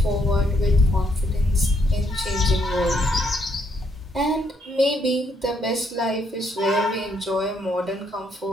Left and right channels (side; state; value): both; normal; correlation 0.73